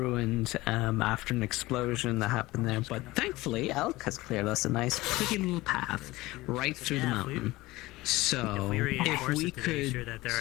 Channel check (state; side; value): quieter; right; 19.4 dB